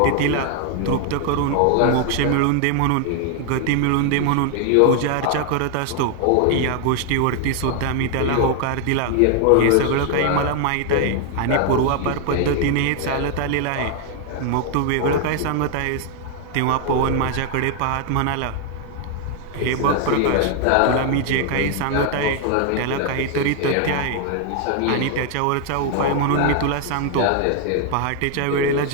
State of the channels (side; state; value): both; different; correlation 0.00